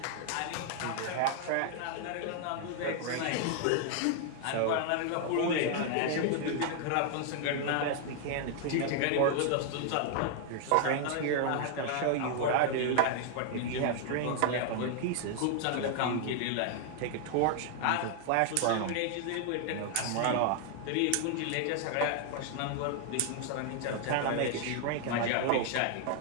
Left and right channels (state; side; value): different; both; correlation 0.00